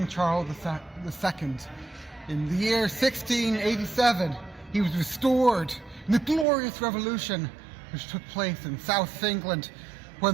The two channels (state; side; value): drops out; left; at 6.5 s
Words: Charles II. In the year 1687, he was restored in the glorious revolution which took place in South England